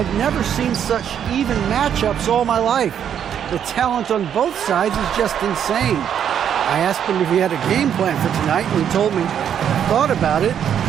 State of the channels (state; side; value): quieter; left; 8.9 dB